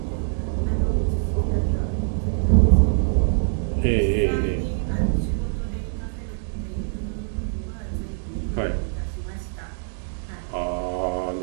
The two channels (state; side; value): silent; left; digital silence